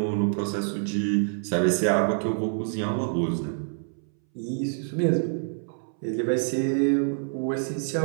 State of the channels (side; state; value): left; silent; 61 dB below the other